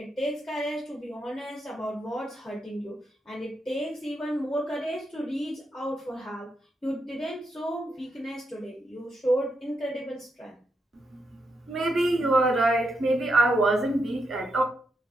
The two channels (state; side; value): normal; both; correlation 0.83